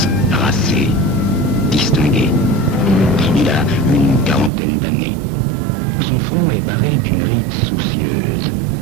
racé, distingué. Il a une quarantaine d'années. Son front est barré d'une ride soucieuse.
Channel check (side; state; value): left; drops out; at 4.5 s